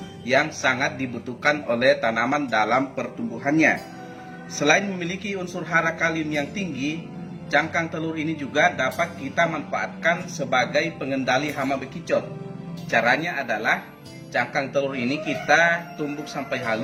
yang sangat dibutuhkan oleh tanaman dalam pertumbuhannya. Selain memiliki unsur hara kalium yang tinggi, cangkang telur ini juga dapat kita manfaatkan sebagai pengendali hama bekicot. Caranya adalah cangkang telur ini kita tumbuk sampai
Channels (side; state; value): both; identical; correlation 1.00